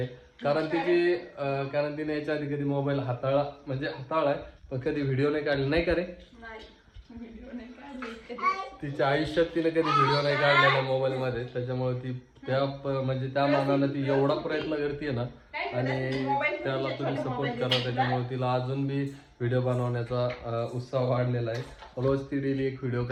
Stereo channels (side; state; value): both; identical; correlation 1.00